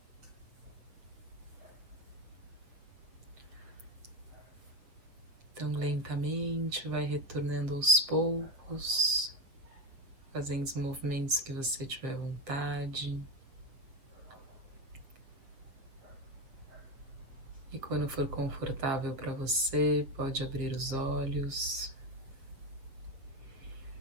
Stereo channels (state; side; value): late; left; 7.5 ms